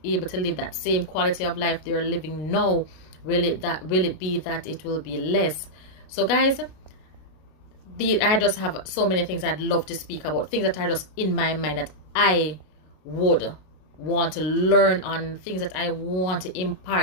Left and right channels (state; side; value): late; right; 32 ms